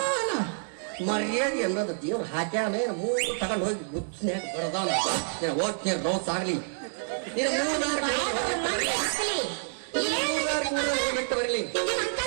ಮರ್ಯಾದೆ ಅನ್ನೋದು ದೇವ್ರು ಹಾಕ್ಯಾನ. ಮೂರು ತಗೊಂಡು ಹೋಗಿ ಬುದ್ಧಿನ್ಯಾಗ ಬಡದಾನ. ಹೋಗ್ತೀನಿ ರೋಸ್ ಆಗ್ಲಿ, ಬಿಟ್ಟು ಬರಲಿ,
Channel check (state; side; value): silent; left; digital silence